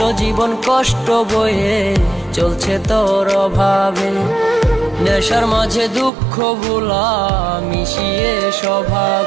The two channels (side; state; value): left; drops out; at 6.1 s